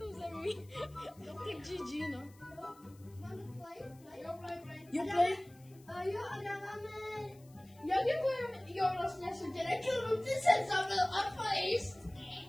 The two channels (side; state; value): left; noise; hiss, 27 dB below the sound